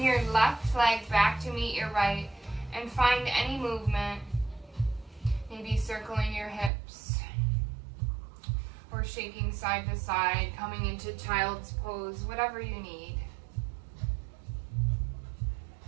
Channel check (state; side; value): drops out; left; at 6.7 s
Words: your left leg back to meet your right, and find any movement, maybe circling your hips, or shaking side to side, coming into child's pose, whatever you need.